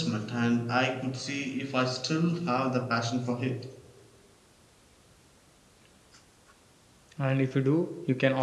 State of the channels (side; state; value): both; identical; correlation 1.00